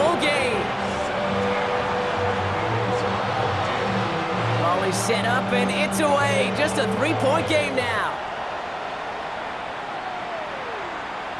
game. Ball is set up and it's away. Just a 3-point game now.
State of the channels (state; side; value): identical; both; correlation 1.00